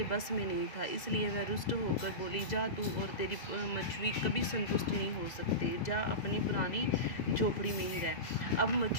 बस में नहीं था, इसलिए वह रुष्ट होकर बोली, जा तू और तेरी मछली कभी संतुष्ट नहीं हो सकते, जा अपनी पुरानी झोपड़ी में ही रह। अब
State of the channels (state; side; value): late; right; 2.0 ms